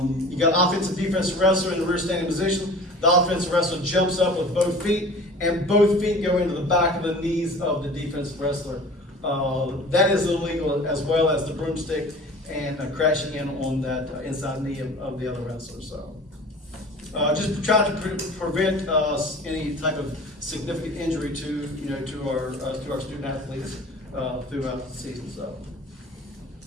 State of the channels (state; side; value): normal; both; correlation 0.42